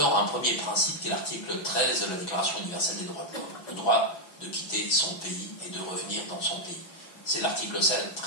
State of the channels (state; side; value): late; right; 6.1 ms